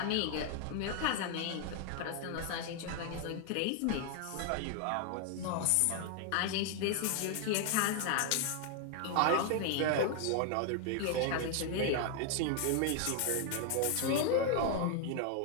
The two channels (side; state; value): both; different; correlation 0.00